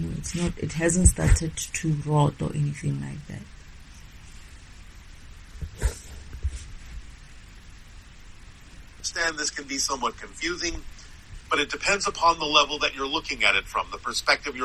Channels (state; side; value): identical; both; correlation 1.00